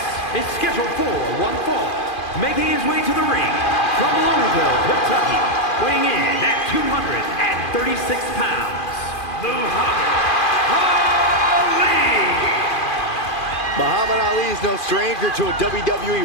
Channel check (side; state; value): right; late; 2.4 ms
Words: is scheduled for one fall, making his way to the ring from Louisville, Kentucky, weighing in at 236 pounds, Muhammad Ali! Muhammad Ali is no stranger to a